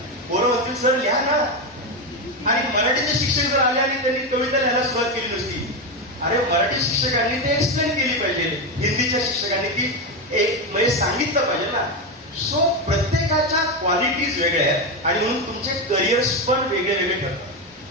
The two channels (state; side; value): normal; both; correlation 0.11